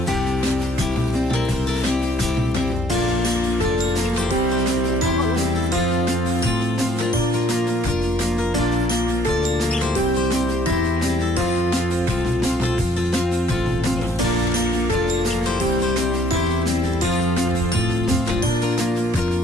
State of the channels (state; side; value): normal; both; correlation 0.62